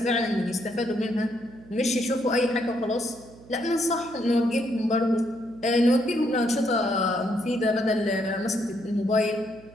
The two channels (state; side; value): noise; right; hum, 22 dB below the sound